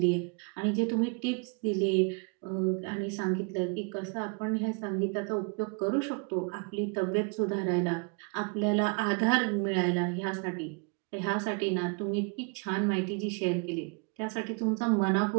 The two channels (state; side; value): quieter; left; 34.8 dB